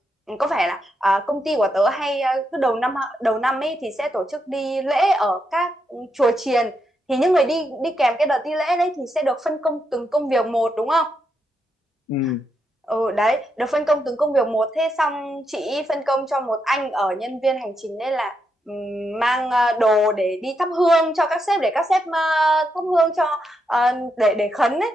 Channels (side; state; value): both; normal; correlation 0.82